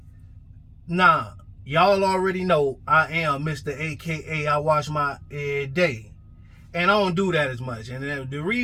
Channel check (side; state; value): both; identical; correlation 1.00